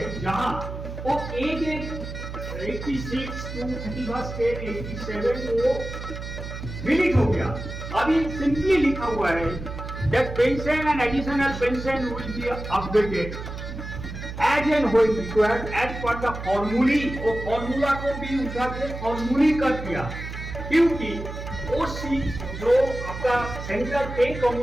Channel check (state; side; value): noise; right; hum, 9 dB below the sound